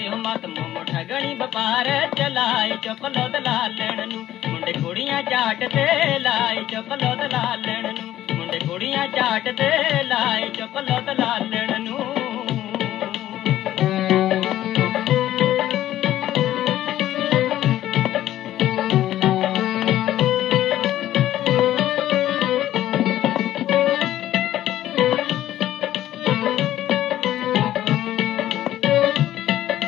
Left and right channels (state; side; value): quieter; right; 13.2 dB